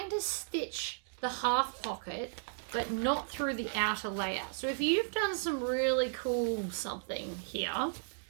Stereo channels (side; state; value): left; silent; digital silence